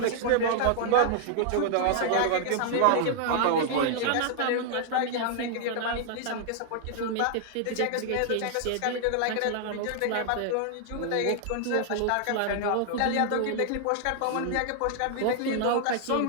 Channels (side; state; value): both; different; correlation 0.00